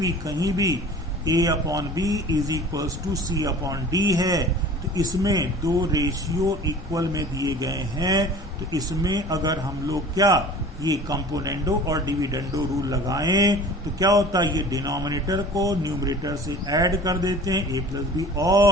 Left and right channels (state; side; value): normal; both; correlation 0.43